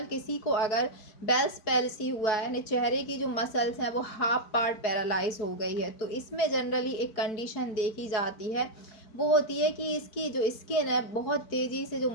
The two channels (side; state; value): right; late; 4.5 ms